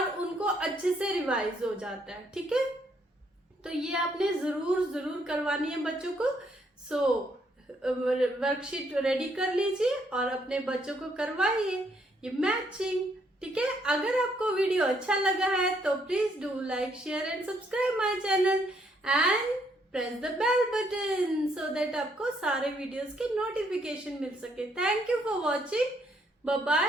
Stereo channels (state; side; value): normal; both; correlation 0.71